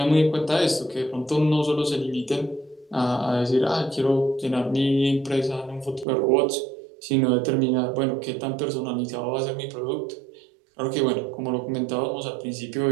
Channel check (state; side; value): drops out; left; at 6.1 s